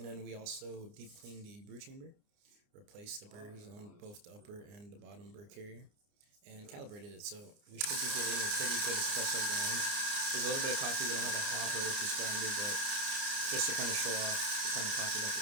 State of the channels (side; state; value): left; late; 29 ms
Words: then we also deep cleaned the brew chamber, replaced the burrs on both the upper and the bottom burr carrier, and calibrated it. So we should be getting a pretty good espresso grind. There's a little bit of coffee. We don't have a hopper with this grinder, but just to kind of show off the kind of coffee that